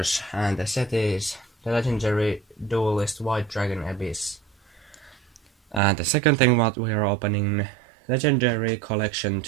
and the set is the legendary Duelist White Dragon Abyss. And the second thing what we are opening, legendary collection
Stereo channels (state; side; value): drops out; left; at 5.8 s